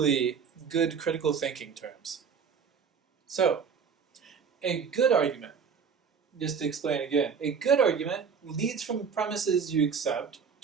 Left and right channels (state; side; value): quieter; left; 6.3 dB